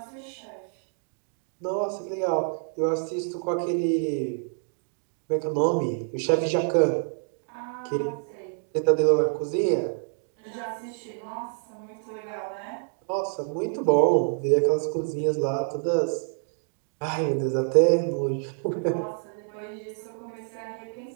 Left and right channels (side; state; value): left; silent; 60 dB below the other